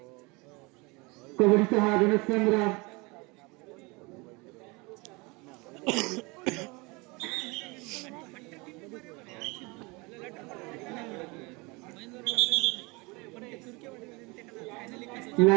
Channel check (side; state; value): left; quieter; 26.5 dB